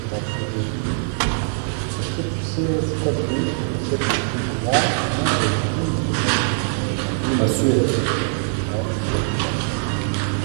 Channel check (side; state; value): left; silent; 64 dB below the other